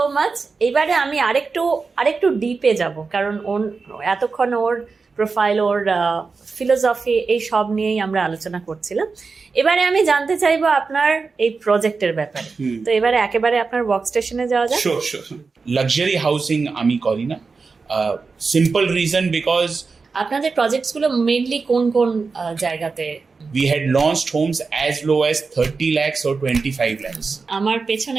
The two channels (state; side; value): quieter; left; 4.5 dB